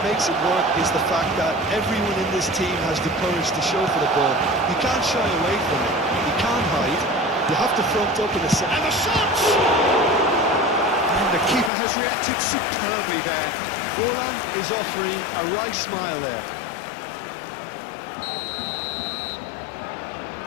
makes it work is the fact that everyone in this team has the courage to show for the ball. You can't shy away from it. You can't hide. You have to front up in a set. And the shots! And the keeper has reacted superbly there. Orlan is offering a wry smile there.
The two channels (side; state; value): right; drops out; at 11.7 s